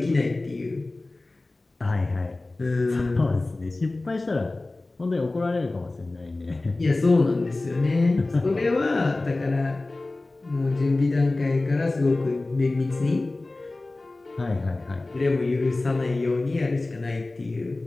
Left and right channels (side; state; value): right; quieter; 3.0 dB